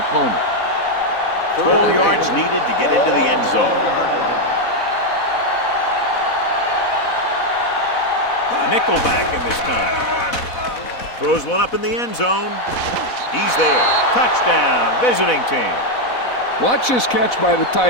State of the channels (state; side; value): late; right; 4.1 ms